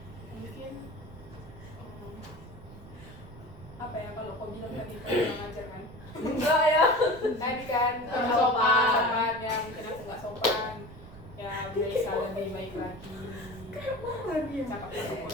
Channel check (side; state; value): right; noise; rumble, 17 dB below the sound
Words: mungkin apa ya, kalau kau bilang tadi kau kurang ajar kan? Enggak ya, tadi kan sopan ya, mungkin aku nggak sopan ya, bisa lebih baik lagi. Cakap-cakap